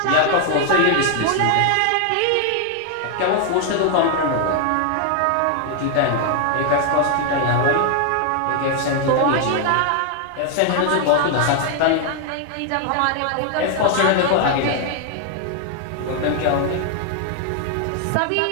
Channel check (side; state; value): both; different; correlation 0.00